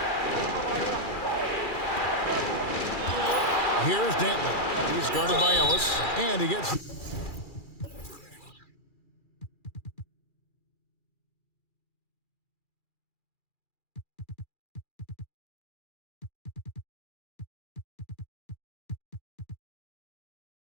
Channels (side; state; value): right; late; 2.4 ms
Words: Here's Dantley. He's guarded by Ellis, and he gets...